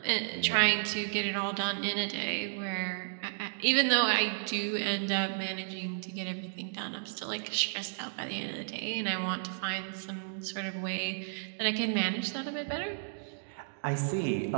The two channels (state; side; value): silent; left; digital silence